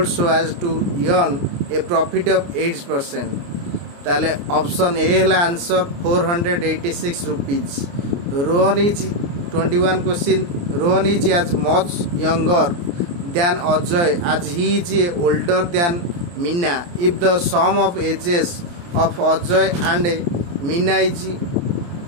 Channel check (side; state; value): left; late; 29 ms